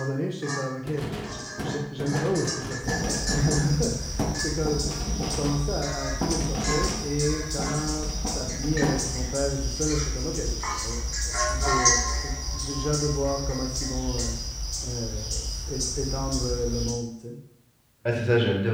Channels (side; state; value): both; identical; correlation 1.00